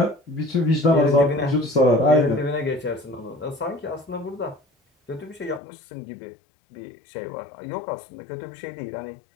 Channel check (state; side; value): drops out; right; at 5.6 s